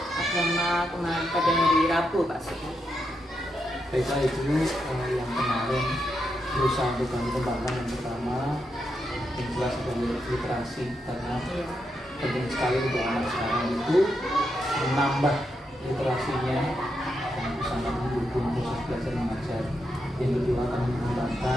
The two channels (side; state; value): both; normal; correlation 0.83